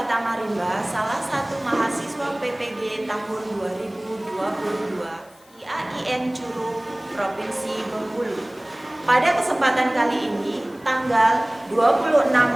salah satu mahasiswa PPG tahun 2022 IAIN Curug, Provinsi Bengkulu. Pada kesempatan kali ini, tanggal 26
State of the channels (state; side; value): noise; left; hiss, 28 dB below the sound